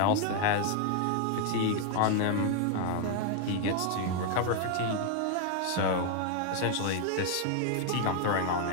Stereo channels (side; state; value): both; different; correlation 0.00